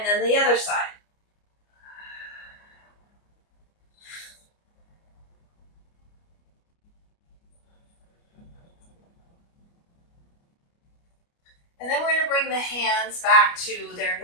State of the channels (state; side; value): late; right; 29 ms